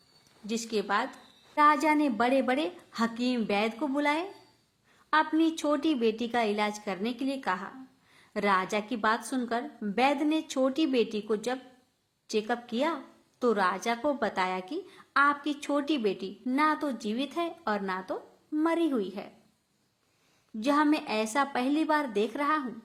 जिसके बाद राजा ने बड़े बड़े हकीम वैद्य को बुलाए, अपनी छोटी बेटी का इलाज करने के लिए कहा। राजा की बात सुनकर वैद्य ने छोटी बेटी को जब चेकअप किया तो राजा को बताया कि आपकी छोटी बेटी ना तो जीवित है और ना तो मरी हुई है। यह मैं ऐसा पहली बार देख रहा हूँ।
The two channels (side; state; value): both; identical; correlation 1.00